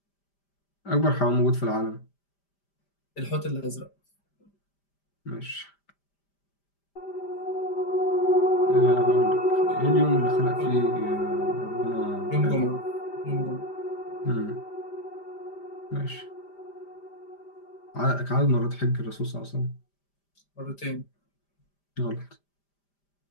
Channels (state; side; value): late; right; 5.0 ms